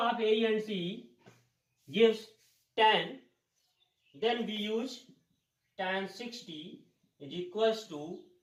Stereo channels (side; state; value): both; identical; correlation 1.00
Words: A and C gives 10. Then we use tan 60 is equals to,